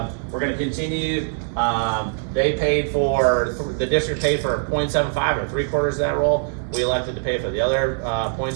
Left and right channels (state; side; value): silent; left; digital silence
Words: We're gonna continue. The district paid for 0.75 or 3/4 of that role. We elected to pay for the other